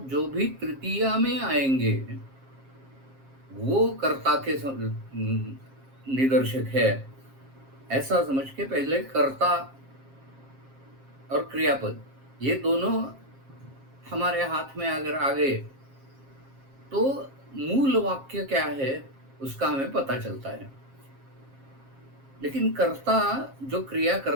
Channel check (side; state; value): left; late; 7.5 ms